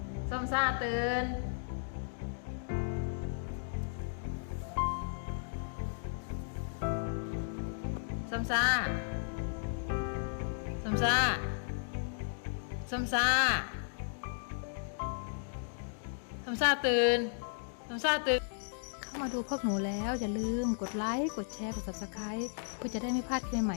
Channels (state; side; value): silent; right; digital silence